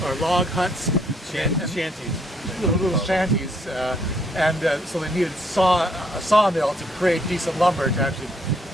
or log huts, shanties. little shanties, and so they needed a sawmill to create decent lumber to actually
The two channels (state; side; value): normal; both; correlation 0.69